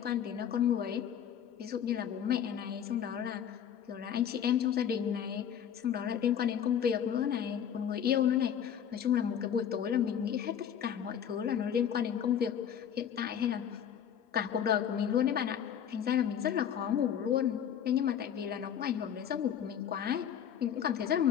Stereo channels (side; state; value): right; quieter; 9.0 dB